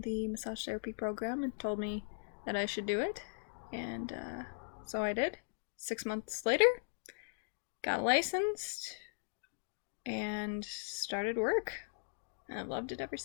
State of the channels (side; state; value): right; silent; digital silence